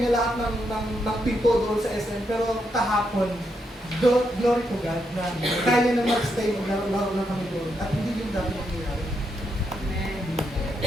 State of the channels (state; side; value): normal; both; correlation 0.80